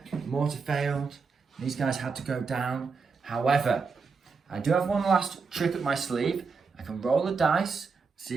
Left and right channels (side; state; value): left; quieter; 5.0 dB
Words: Mortar failed. These guys had to go down. However, I do have one last trick up my sleeve. I can roll the dice,